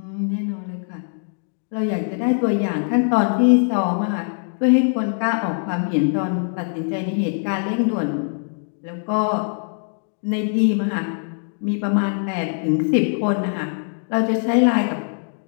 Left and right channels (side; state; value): right; silent; 64 dB below the other